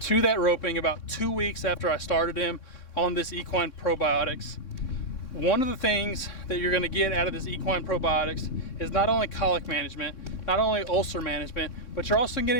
to that roping about 2 weeks after I started him on this Equine Probiotics. One of the things that you're gonna get out of this Equine Probiotics is not only colic management, not only ulcer management, but you're also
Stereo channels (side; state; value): right; late; 3.6 ms